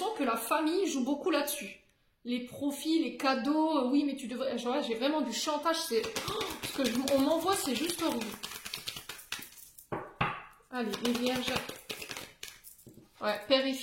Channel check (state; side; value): identical; both; correlation 1.00